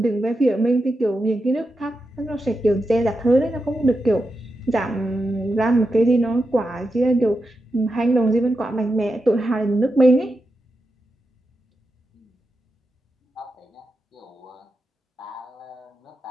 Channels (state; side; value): normal; both; correlation 0.88